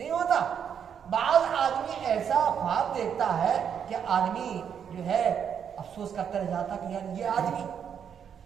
ہوتا؟ بعض آدمی ایسا خواب دیکھتا ہے کہ آدمی جو ہے افسوس کرتا رہ جاتا کہ یار یہ آدمی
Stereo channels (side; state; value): left; quieter; 7.9 dB